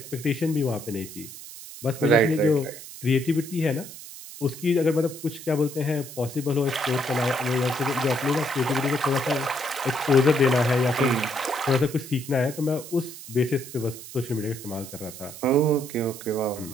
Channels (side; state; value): right; noise; hiss, 14 dB below the sound